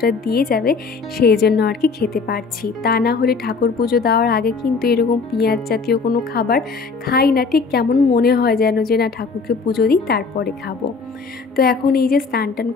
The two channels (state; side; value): quieter; right; 4.7 dB